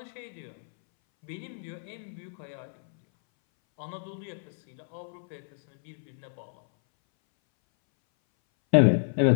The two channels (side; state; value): right; silent; 58 dB below the other